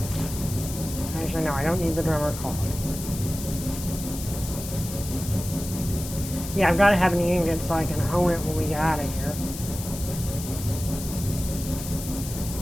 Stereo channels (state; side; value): noise; left; hiss, 10 dB below the sound